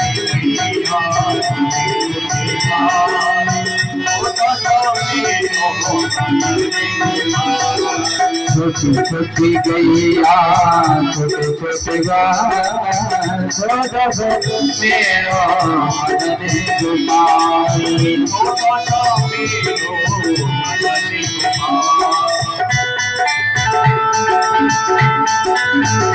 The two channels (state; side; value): identical; both; correlation 1.00